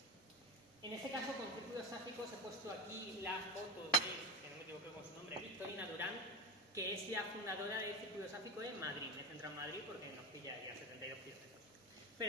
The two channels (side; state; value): both; normal; correlation 0.18